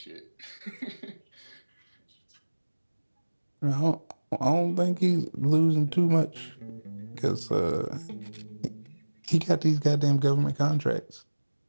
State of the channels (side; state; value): both; inverted; correlation -1.00